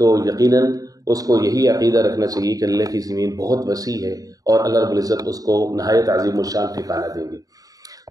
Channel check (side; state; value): left; late; 0.18 ms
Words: یقیناً اس کو یہی عقیدہ رکھنا چاہیے کہ اللہ کی زمین بہت وسیع ہے اور اللہ رب العزت اس کو نہایت عظیم الشان ٹھکانہ دیں گے۔